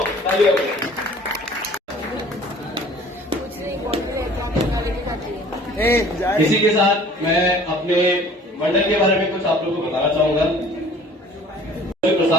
तालियां हो जाए। इसी के साथ मैं अपने मंडल के बारे में कुछ आप लोगों को बताना चाहूंगा।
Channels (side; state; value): both; normal; correlation 0.50